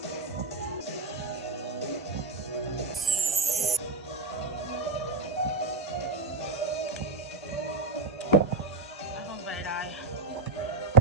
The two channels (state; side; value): quieter; left; 3.7 dB